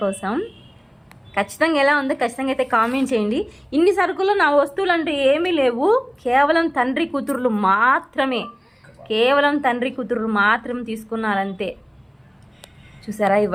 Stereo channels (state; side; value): identical; both; correlation 1.00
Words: కోసం. ఖచ్చితంగా ఎలా ఉందో ఖచ్చితంగా అయితే కామెంట్ చేయండి. ఇన్ని సరుకులు నా వస్తువులు అంటే ఏమీ లేవు, కేవలం తండ్రి కూతుర్లు మాత్రం తీసుకున్నారంతే. చూసారా, ఈ